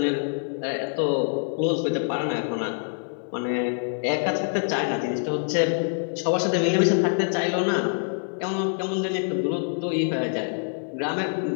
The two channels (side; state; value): right; silent; digital silence